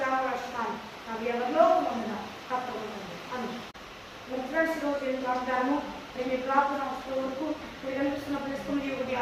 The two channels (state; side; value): identical; both; correlation 1.00